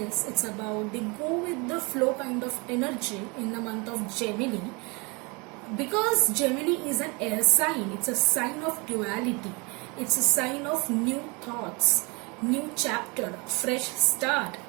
It's about the go with the flow kind of energy in the month of Gemini. Because Gemini is an air sign, it's a sign of duality. It's a sign of new thoughts, new chapter, fresh start.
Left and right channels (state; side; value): quieter; left; 29.2 dB